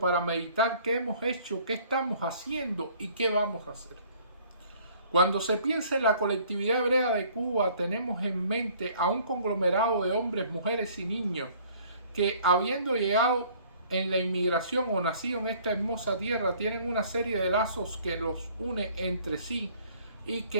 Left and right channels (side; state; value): both; inverted; correlation -0.56